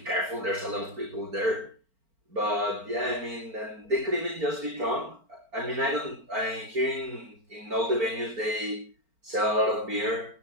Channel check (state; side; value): late; left; 4.5 ms